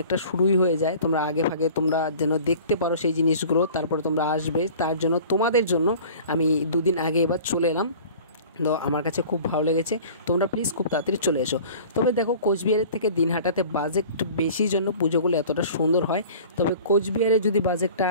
শুরুই হয়ে যায়। তোমরা আগে ভাগে তোমরা যেন দেখতে পারো সেই জিনিসগুলো, তারপরে তোমরা আসবে, তার জন্য তোমাদের জন্য আমি দুদিন আগে এবার চলে এলাম। তো আমার কাছে খুব ভালো লেগেছে। তোমরা প্লিজ খুব তাড়াতাড়ি চলে এসো। তবে দেখো, কোচবিহারের থেকে দিনহাটাতে বাজেট বেশি জন্য পুজোগুলো এতটা সুন্দর হয়। তবে কোচবিহারে যদি বাজেটটা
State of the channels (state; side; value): inverted; both; correlation -0.44